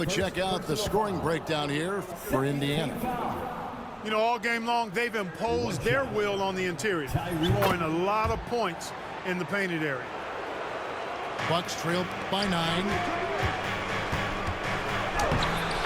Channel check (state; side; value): identical; both; correlation 1.00